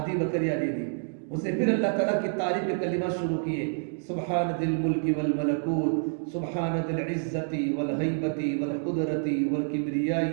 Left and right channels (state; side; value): silent; left; digital silence